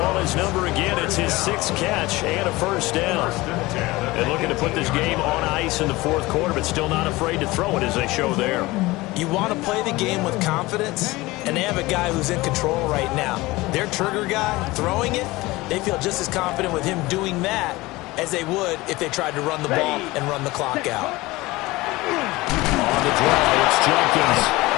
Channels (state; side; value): quieter; right; 20.5 dB